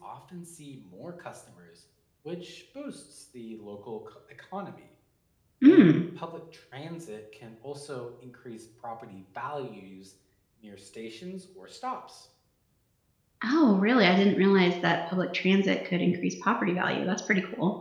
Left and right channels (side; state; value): both; identical; correlation 1.00